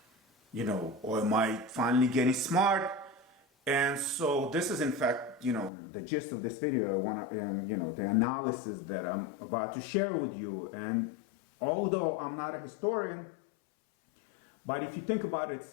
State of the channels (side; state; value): right; drops out; at 5.7 s